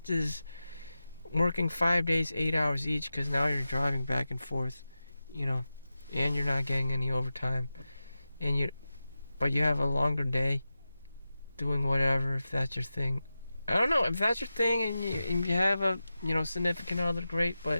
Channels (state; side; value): inverted; both; correlation -0.93